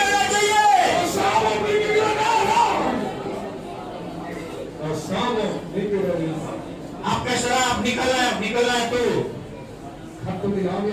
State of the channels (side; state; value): both; identical; correlation 1.00